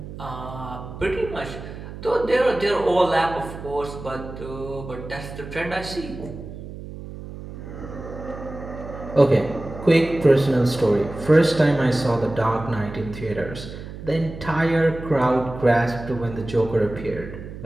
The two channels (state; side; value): noise; right; hum, 12 dB below the sound